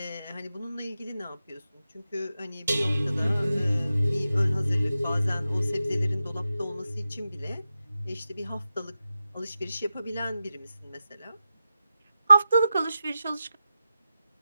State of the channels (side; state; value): both; inverted; correlation -0.92